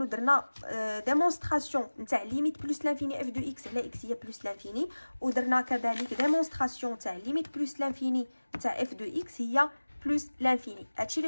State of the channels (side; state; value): both; inverted; correlation -1.00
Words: درنا ديمونستراسيون نتاع ليميت بلس لانفيني اف دو اكس على اكس هي بلس لانفيني، ودرنا كذلك ديمونستراسيون تاع ليميت بلس لانفيني نتاع اف دو اكس هي بلس لانفيني. هادشي